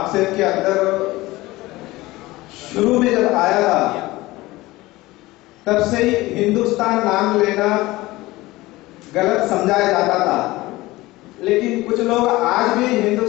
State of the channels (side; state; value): right; quieter; 19.3 dB